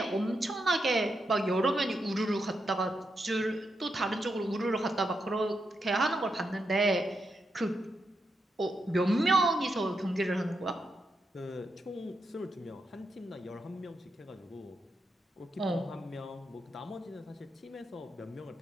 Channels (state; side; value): normal; both; correlation 0.84